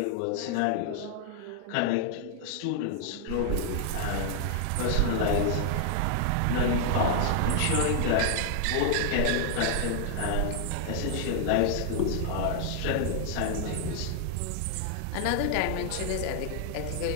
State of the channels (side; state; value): both; different; correlation 0.00